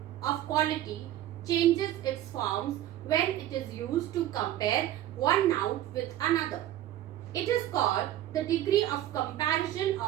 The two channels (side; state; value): left; quieter; 13.0 dB